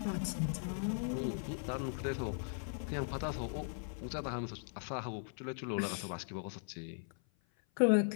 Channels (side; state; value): right; silent; 52 dB below the other